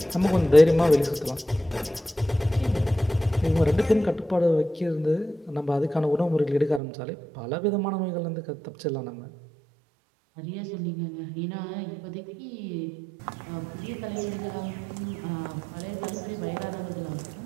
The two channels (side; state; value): left; drops out; at 6.8 s